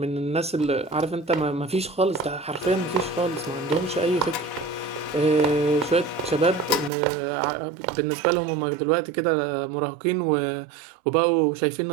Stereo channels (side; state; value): left; drops out; at 6.9 s